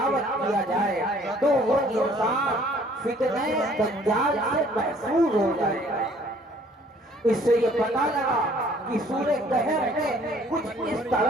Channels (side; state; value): both; normal; correlation 0.58